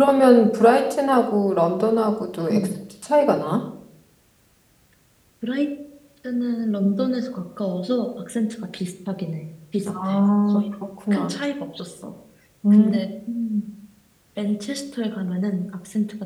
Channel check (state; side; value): identical; both; correlation 1.00